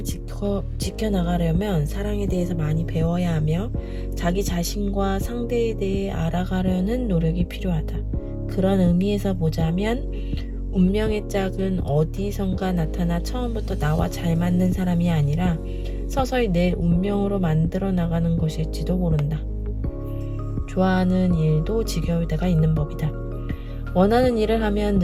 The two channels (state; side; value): identical; both; correlation 1.00